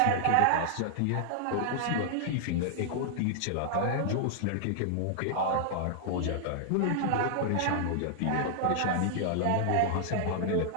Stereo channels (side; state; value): both; different; correlation -0.01